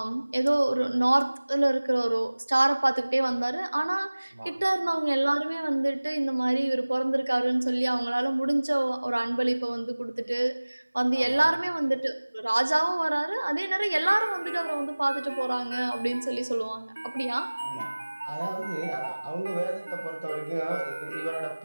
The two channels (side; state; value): both; inverted; correlation -1.00